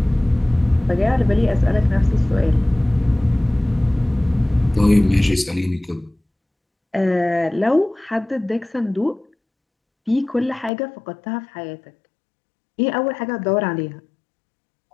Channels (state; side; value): drops out; right; at 10.7 s